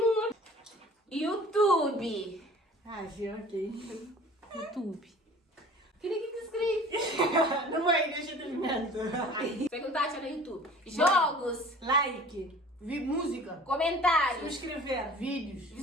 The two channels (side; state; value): both; normal; correlation 0.46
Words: YouTube. Ah, sim, ok. YouTube. Queria que escreve. Não vai, deixa eu terminar. Perguntar no YouTube. Jogos, Like, música, comentários, subscrever, vídeos,